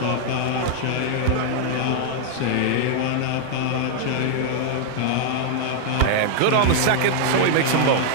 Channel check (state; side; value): different; both; correlation 0.00